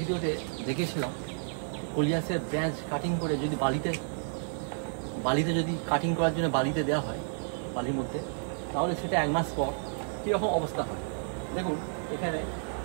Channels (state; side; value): silent; left; digital silence